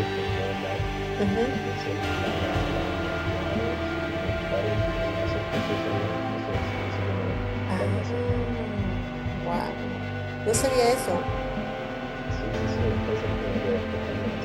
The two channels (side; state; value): both; identical; correlation 1.00